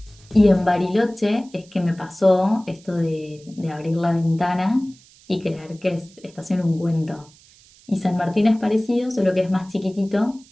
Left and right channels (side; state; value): right; noise; hiss, 26 dB below the sound